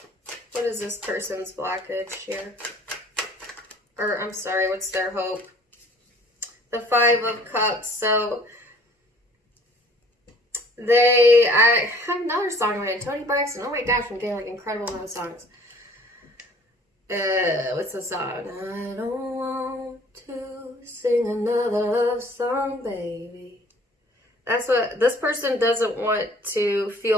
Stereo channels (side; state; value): both; normal; correlation 0.54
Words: What is this person's blockage here? Or, I'm sorry, what's their hope? The Five of Cups. So, I have another song by Toni Braxton. Oh my gosh, I'm getting like incredible amount of songs. what's the song? I don't want to sing another love song, baby. That's what this person doesn't want to